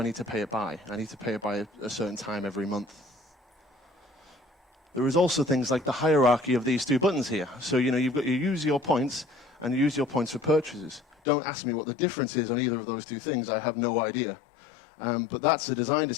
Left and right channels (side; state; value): right; drops out; at 11.2 s